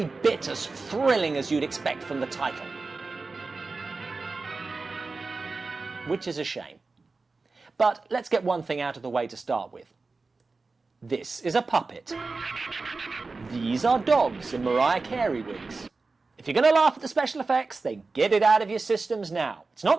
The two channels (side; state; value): left; quieter; 3.9 dB